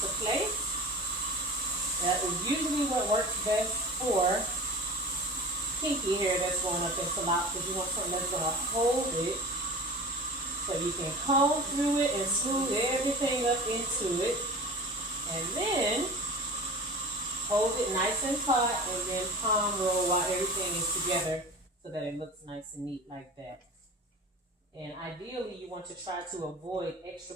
place. That is usually what works best for kinky hair that's going up into locks, because you want something that's going to hold it. So you can comb through it and smooth everything up into it. And then hold it nice and taut and then palm roll while everything is together so that it looks nice and neat like that. And ideally you want to try to avoid extra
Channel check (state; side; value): normal; both; correlation 0.36